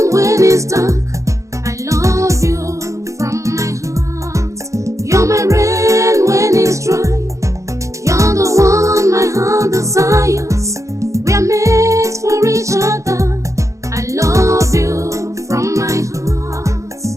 when it's dark. I love you from my heart. You're my rain when it's dry. You're the one my heart desires. We are made for each other. I love you from my heart.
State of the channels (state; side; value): late; left; 0.15 ms